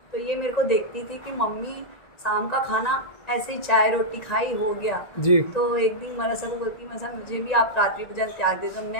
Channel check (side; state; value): right; late; 1.9 ms